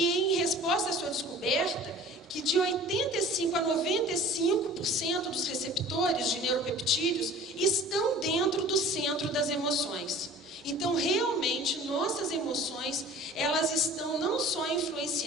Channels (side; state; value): both; normal; correlation 0.45